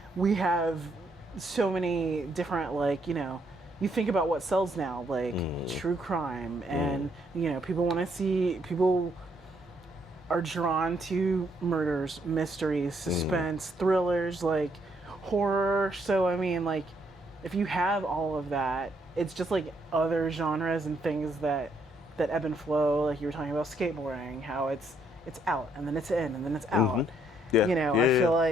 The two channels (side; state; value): both; normal; correlation 0.72